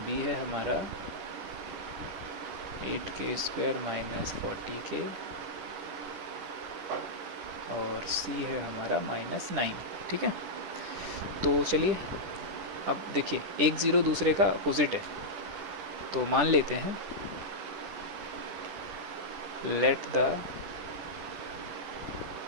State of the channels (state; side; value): late; left; 10 ms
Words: बी है हमारा 8k स्क्वायर माइनस 40k, और सी है हमारा माइनस 9, ठीक है। तो चलिए अब देखिए, एक ज़ीरो दूसरे का अपोजिट है। तो मान लेते हैं let the